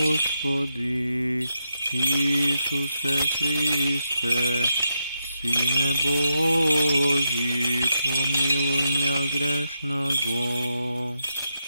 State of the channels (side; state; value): both; inverted; correlation -0.84